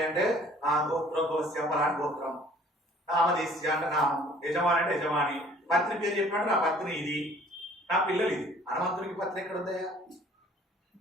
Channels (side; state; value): both; normal; correlation 0.54